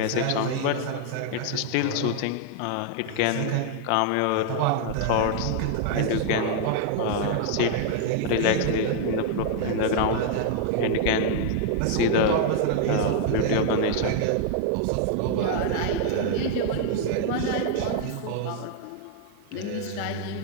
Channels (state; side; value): different; both; correlation 0.00